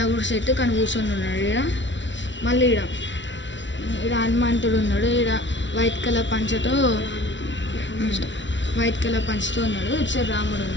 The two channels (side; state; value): right; late; 0.54 ms